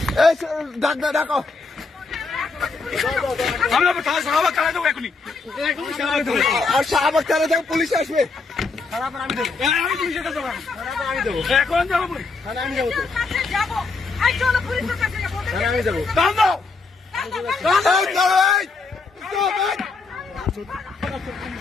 এই ডাক ডাকো, আমি শাহবাগ চালাই দেবো এখনই, আর শাহবাগ চালা যাও, পুলিশ আসবে। আমি পুলিশের কাছে যাবো, আমি দেবো, এখন যাবো পুলিশ, আমি যাবো তো, আমি যাবো। দাম দাও, এই,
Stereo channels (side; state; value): right; quieter; 4.2 dB